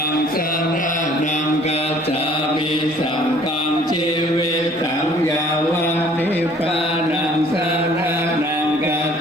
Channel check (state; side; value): normal; both; correlation 0.55